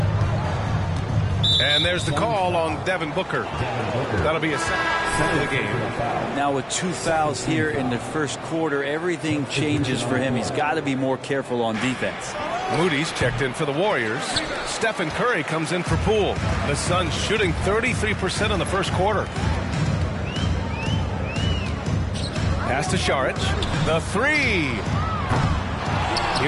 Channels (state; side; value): identical; both; correlation 1.00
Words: And there's the call on Devin Booker. That'll be a second of the game. Now with 2 fouls here in the first quarter, everything changes for him. He's got to be more careful on defense. Moody's checked in for the Warriors. Stephen Curry comes in for Poole. The Suns shooting 33% in the first quarter. Pass to Šarić. The three.